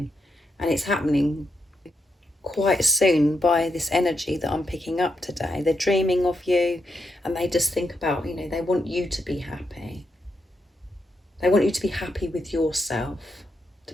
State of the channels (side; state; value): both; normal; correlation 0.82